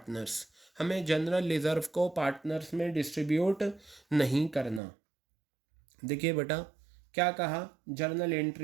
हमें जनरल रिजर्व को पार्टनर्स में डिस्ट्रीब्यूट नहीं करना। देखिए बेटा क्या कहा, जर्नल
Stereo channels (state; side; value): drops out; left; at 4.8 s